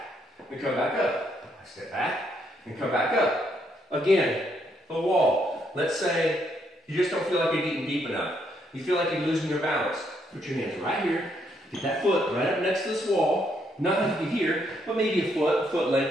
and come back up. I step back and come back up. Again, the wall. Let's say you just don't feel like you're getting deep enough. You feel like you're losing your balance. Put your hands right here. Get that foot right up next to this wall. Not like here, but maybe a foot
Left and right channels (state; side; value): normal; both; correlation 0.74